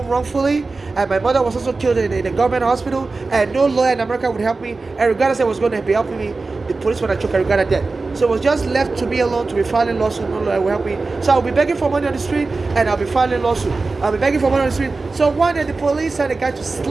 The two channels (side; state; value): left; quieter; 3.8 dB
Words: wrongfully, and my mother was also killed in a government hospital, and no lawyer in America would help me. Eric Garner said was going to be helping me. The police when I took Eric Garner dead. So it was just left to me alone to be filing lawsuit. No lawyer will help me. So I'll be begging for money on the street, and I'll be filing lawsuit. I'll be begging for money on the street. So one day the police sent a guy to